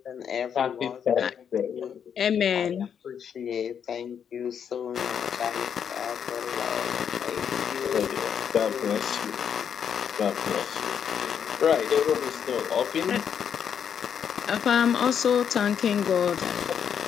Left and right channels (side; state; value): right; quieter; 7.9 dB